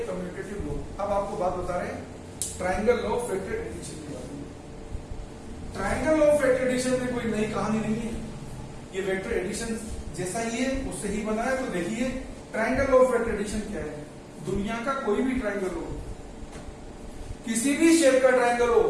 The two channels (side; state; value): both; identical; correlation 1.00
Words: commutative law. अब आपको बात बता रहे हैं triangle law of vector addition के बारे में। Triangle law of vector addition में कोई नई कहानी नहीं है, ये वेक्टर एडिशन जैसा ही है, उससे ही बना है। तो देखिए triangle law of vector addition क्या है, दुनिया का कोई भी ट्रायंगल हो, किसी भी शेप का ट्रायंगल हो,